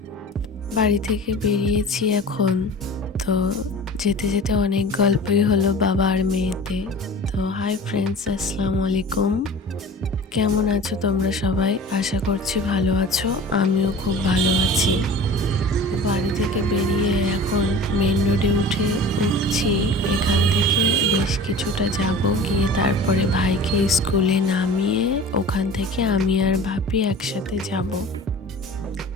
বাড়ি থেকে বেরিয়েছি এখন। তো যেতে যেতে অনেক গল্পই হলো বাবা আর মেয়েতে। তো হাই ফ্রেন্ডস, আসসালামু আলাইকুম। কেমন আছো তোমরা সবাই? আশা করছি ভালো আছো। আমিও খুব ভালো আছি। বাড়ি থেকে বেরিয়ে এখন মেন রোডে উঠছি। এখান থেকে বেশ কিছুটা যাব, গিয়ে তারপরে ভাইকে স্কুলে নামিয়ে ওখান থেকে আমি আর ভাবি একসাথে যাব।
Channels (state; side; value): normal; both; correlation 0.39